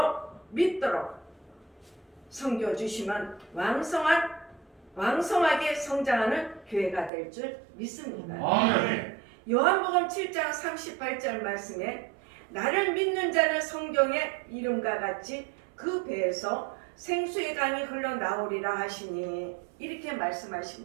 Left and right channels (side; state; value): left; drops out; at 7.1 s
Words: 믿도록 섬겨주시면 왕성하게 성장하는 교회가 될 줄 믿습니다. 아멘. 요한복음 7장 38절 말씀에 나를 믿는 자는 성경의 이름과 같이 그 배에서 생수의 강이 흘러나오리라 하시니 이렇게